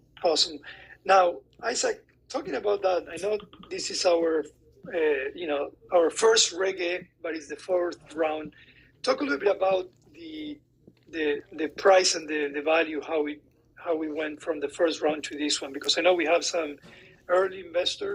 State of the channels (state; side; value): identical; both; correlation 1.00